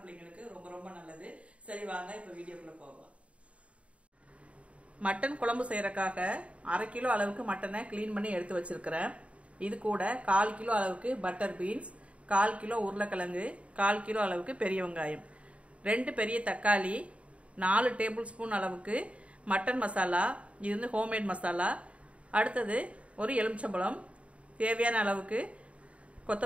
பிள்ளைங்களுக்கு ரொம்ப நல்லது. சரி வாங்க இப்ப வீடியோக்குள்ள போகலாம். மட்டன் குழம்பு செய்யறதுக்காக 1/2 கிலோ அளவுக்கு மட்டனை கிளீன் பண்ணி எடுத்து வச்சிருக்கிறேன். இது கூட 1/4 கிலோ அளவுக்கு பட்டர் பீன்ஸ், 1/4 கிலோ உருளைக்கிழங்கு, 1/4 கிலோ அளவுக்கு பெரிய வெங்காயம், 2 பெரிய தக்காளி, 4 டேபிள் ஸ்பூன் அளவுக்கு மட்டன் மசாலா, இது வந்து ஹோம்மேட் மசாலா. அடுத்தது ஒரு எலுமிச்சம்பழம், தேவையான அளவுக்கு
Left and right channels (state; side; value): late; left; 0.063 ms